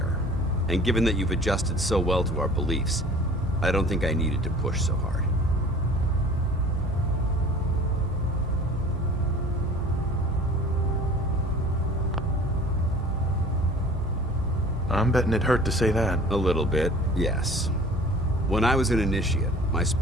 And given that you've adjusted so well to our beliefs, I don't think I needed to push so hard. I'm betting it hurt to say that. A little bit, yes. When I was an initiate, my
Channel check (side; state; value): both; normal; correlation 0.46